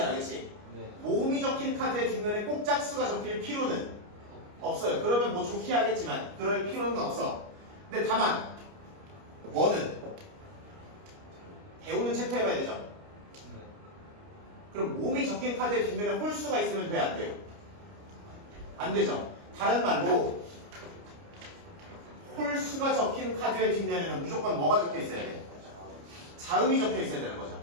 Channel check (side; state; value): left; late; 29 ms